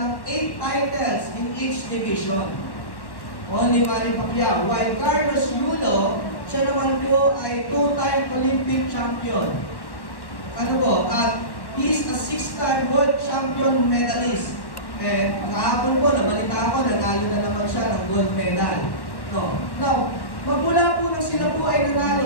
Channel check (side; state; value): right; late; 1.1 ms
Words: 8 titles in each division. Only Manny Pacquiao. While Carlos Yulo, siya naman po ay 2-time Olympic champion. Ano po? At he's a 6-time world champion medalist. Kahapon po, nabalita ko, nanalo na naman siya ng gold medal. No. Now, magmula po nang sila po ay